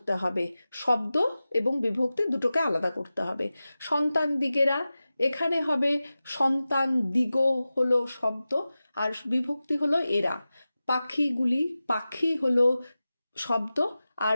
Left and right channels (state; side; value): inverted; both; correlation -0.95